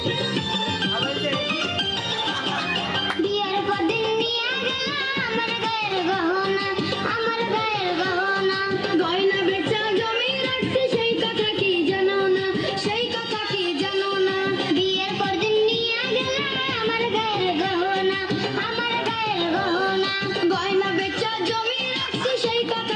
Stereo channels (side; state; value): both; identical; correlation 1.00